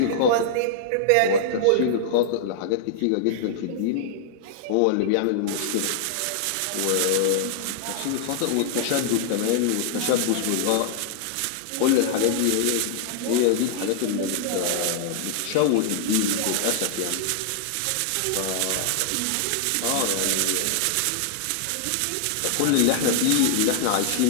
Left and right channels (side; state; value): both; different; correlation -0.01